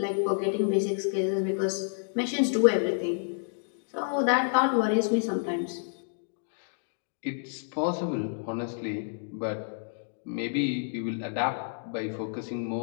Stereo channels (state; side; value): silent; right; digital silence